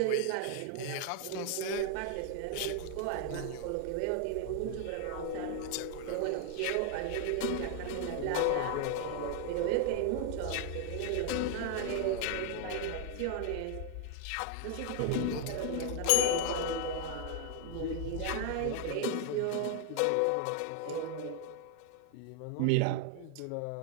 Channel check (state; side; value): different; both; correlation 0.00